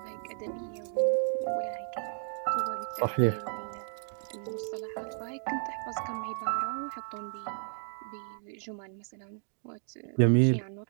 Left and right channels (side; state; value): left; silent; 56 dB below the other